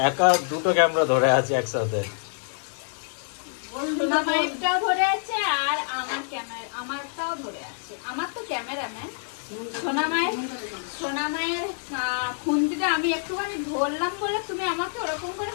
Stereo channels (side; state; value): right; silent; digital silence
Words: একা দুটো ক্যামেরা ধরে আছি একসাথে। সোনামায়েরটাও ধরে আছে আর আমারটাও ধরে আছে। আমার তো ক্যামেরাম্যান। সোনামায়ের খুন্তিটা আমি একটুখানি ধরলাম বলে তুমি আমাকে ওরকম করে